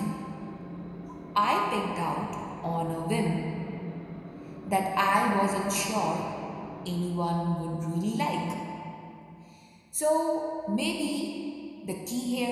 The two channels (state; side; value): identical; both; correlation 1.00